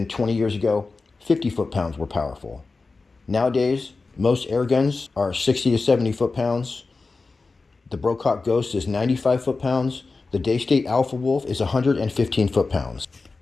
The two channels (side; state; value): right; quieter; 3.9 dB